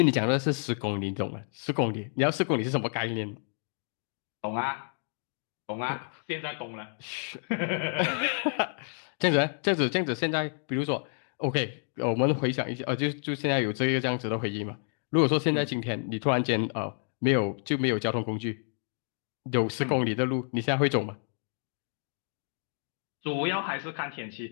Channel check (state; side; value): silent; right; 58 dB below the other